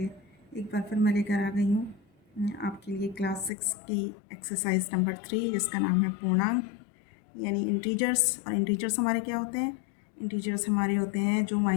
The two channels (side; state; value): right; drops out; at 3.5 s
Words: एक बार फिर मैं लेकर आ गई हूँ आपके लिए क्लास 6 की एक्सरसाइज नंबर 3, जिसका नाम है पूर्णांक यानी इंटीजर्स। और इंटीजर्स हमारे क्या होते हैं? इंटीजर्स हमारे होते हैं जो